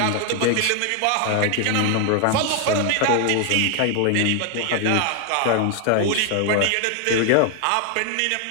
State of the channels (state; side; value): different; both; correlation 0.01